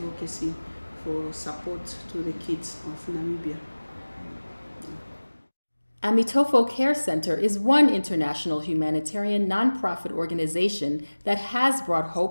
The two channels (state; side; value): inverted; both; correlation -1.00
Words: for support to the kids of Namibia. Amitofo Care Center is one international humanitarian nonprofit organization that has brought